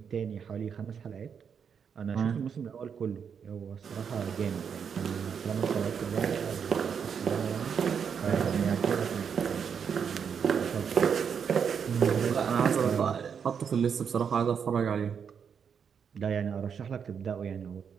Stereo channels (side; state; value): left; quieter; 7.1 dB